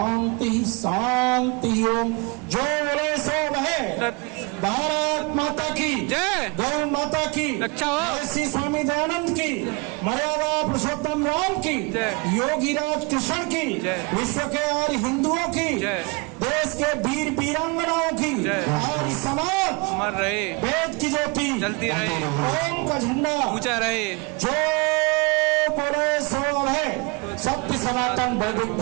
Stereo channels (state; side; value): quieter; left; 28.8 dB